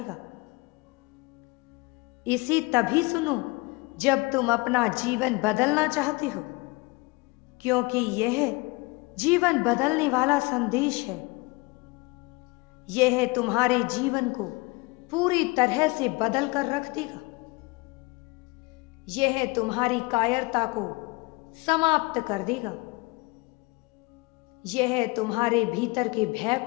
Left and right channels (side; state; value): right; quieter; 25.4 dB